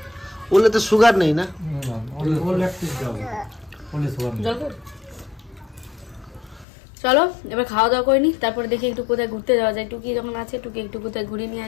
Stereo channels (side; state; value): right; drops out; at 6.7 s